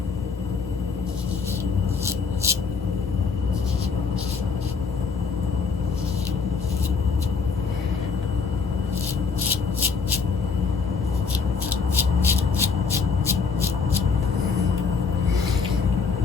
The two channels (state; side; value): quieter; right; 5.3 dB